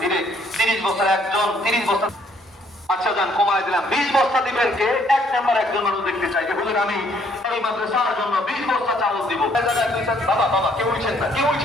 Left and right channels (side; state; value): both; normal; correlation 0.65